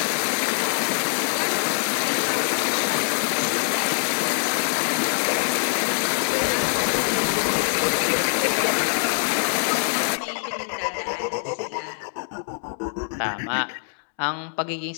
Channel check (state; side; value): silent; right; digital silence